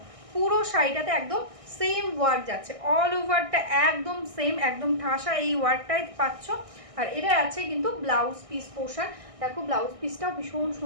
পুরো শাড়িটাতে একদম সেম ওয়ার্ক যাচ্ছে, অল ওভারটা একদম সেম, একদম ঠাসা এই ওয়ার্কটাই পাচ্ছ। আর এটা আছে কিন্তু ব্লাউজ পিস পোর্শন। দেখো ব্লাউজ পিসটাও ভীষণ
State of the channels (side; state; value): left; late; 1.6 ms